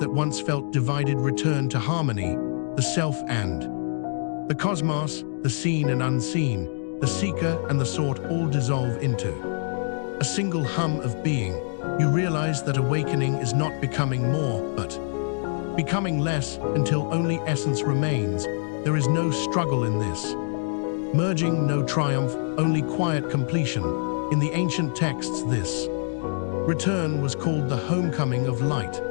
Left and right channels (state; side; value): silent; right; digital silence